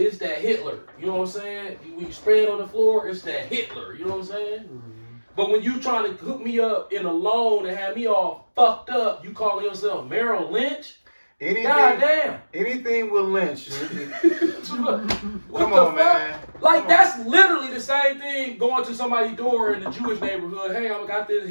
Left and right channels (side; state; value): both; inverted; correlation -1.00